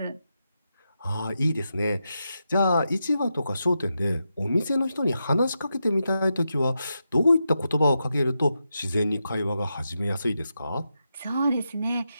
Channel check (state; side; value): inverted; both; correlation -0.87